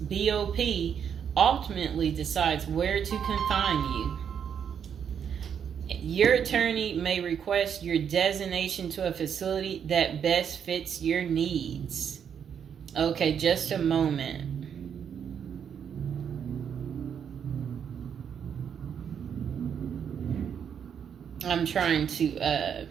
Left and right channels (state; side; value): quieter; left; 7.9 dB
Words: ultimately decides where to confine you. Your attorney may request your designation to a facility that best fits your needs. Okay, just a moment. I'm trying to